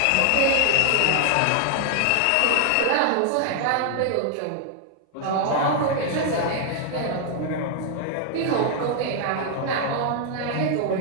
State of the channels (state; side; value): different; both; correlation 0.00